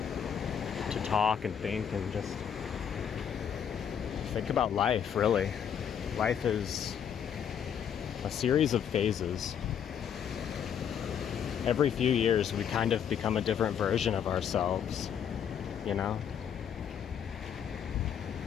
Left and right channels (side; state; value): right; quieter; 8.3 dB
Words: talk and think and just think about life, really. Life is a series of phases. Every few years we kind of become a different version of ourselves, you know?